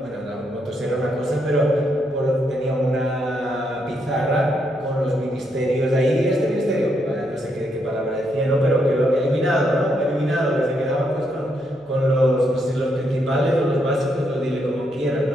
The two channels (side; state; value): left; noise; hum, 30 dB below the sound